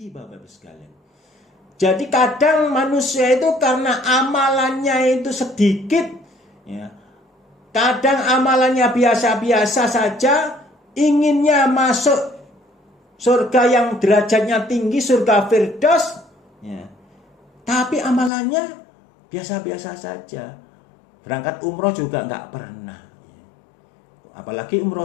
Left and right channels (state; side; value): drops out; right; at 18.3 s